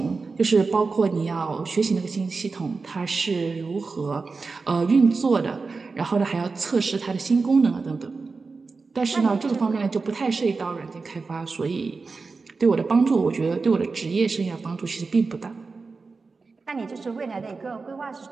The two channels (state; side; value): quieter; left; 4.3 dB